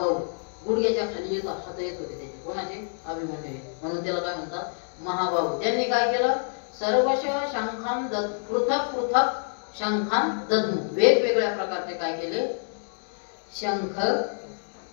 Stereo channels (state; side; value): silent; right; digital silence